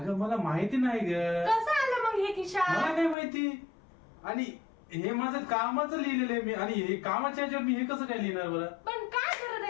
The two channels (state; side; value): drops out; right; at 3.2 s